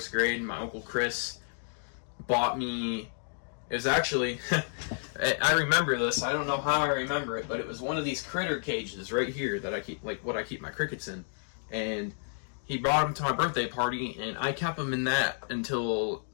grade. My Uncle Chris bought me, it was actually, I remember this, I don't know how I remember it, but it was one of these critter cages right here that I keep, like what I keep my crickets in. And he brought them to my birthday party, and I kept them in that until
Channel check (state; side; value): silent; right; digital silence